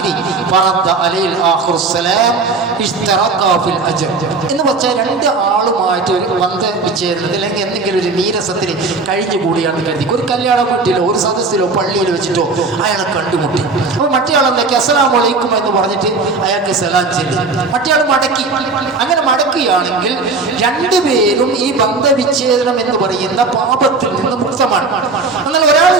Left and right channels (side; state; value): left; quieter; 3.9 dB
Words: ഫറദ്ദ അലൈൽ ആഖിറു സലാം ഇഷ്തറക ഫിൽ അജ്ർ. എന്ന് വെച്ചാൽ 2 ആളുമായിട്ട് ഒരു ബന്ധവിച്ഛേദനത്തിൽ അല്ലെങ്കിൽ എന്തെങ്കിലും ഒരു നീരസത്തിൽ കഴിഞ്ഞുകൂടിയാണെന്ന് കരുതി ഒരു കല്യാണ വീട്ടിലോ ഒരു സദസ്സിലോ പള്ളിയിലോ വെച്ചിട്ടോ അയാളെ കണ്ടുമുട്ടി. അപ്പോൾ മറ്റേ ആളെന്തൊക്കെ അസ്സലാമു അലൈക്കും എന്ന് പറഞ്ഞിട്ട് അയാൾക്ക് സലാം ചൊല്ലി, മറ്റേ ആൾ മടക്കി. അങ്ങനെ മടക്കുകയാണെങ്കിൽ 2 പേരും ഈ ബന്ധവിച്ഛേദനം എന്ന് പറയുന്ന പാപത്തിൽ നിന്ന് മുക്തമാണ്. എന്നാൽ ഒരാൾ